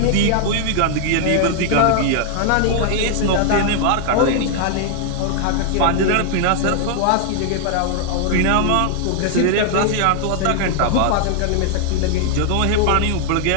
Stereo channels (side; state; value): both; different; correlation 0.00